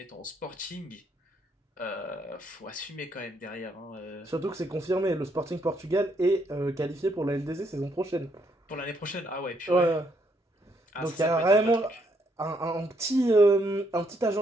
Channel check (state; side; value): normal; both; correlation 0.73